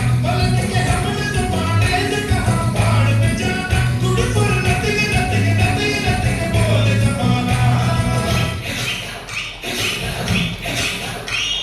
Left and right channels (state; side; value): identical; both; correlation 1.00